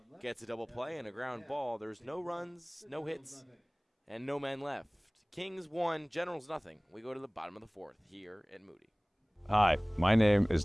Gets a double play and a ground ball. There's no runs, no hits, and no men left. Kings 1, Generals nothing. We go to the bottom of the 4th here at Moody. Hi, my name is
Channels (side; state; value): both; identical; correlation 1.00